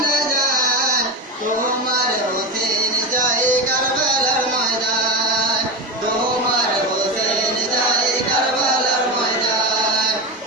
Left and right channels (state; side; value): normal; both; correlation 0.17